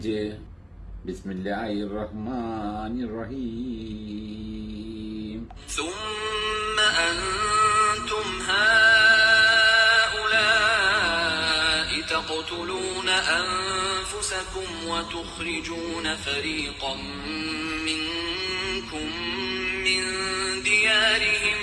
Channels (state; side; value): identical; both; correlation 1.00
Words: ബിസ്മില്ലാഹിർ റഹ്മാനിർ റഹീം. ثم أنتم هؤلاء تقتلون أنفسكم وتخرجون فريقا منكم من ديارهم